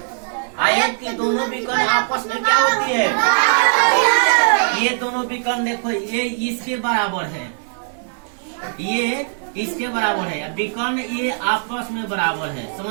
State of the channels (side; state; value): left; silent; digital silence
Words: आयत की दोनों विकर्ण आपस में क्या होती है? ये दोनों विकर्ण देखो, ये इसके बराबर है, ये इसके बराबर है। विकर्ण ये आपस में बराबर है।